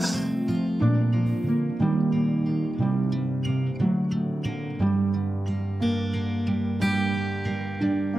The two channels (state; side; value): normal; both; correlation 0.93